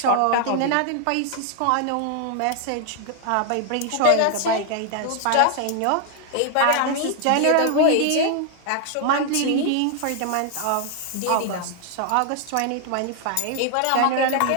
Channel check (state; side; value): different; both; correlation 0.00